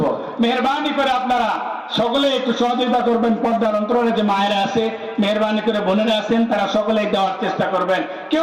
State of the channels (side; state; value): both; identical; correlation 1.00